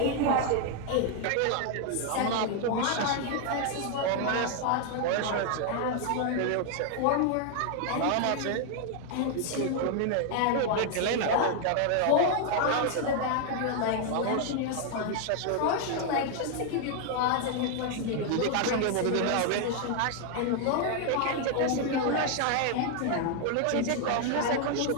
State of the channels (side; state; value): both; different; correlation 0.00